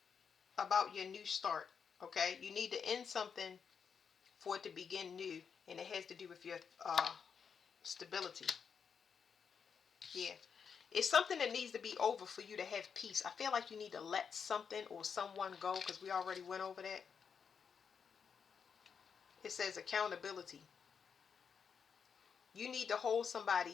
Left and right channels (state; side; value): quieter; right; 6.5 dB